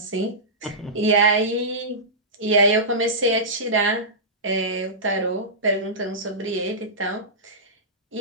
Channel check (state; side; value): normal; both; correlation -0.17